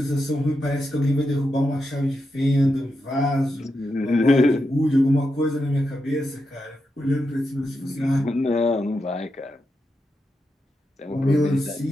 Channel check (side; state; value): both; normal; correlation 0.86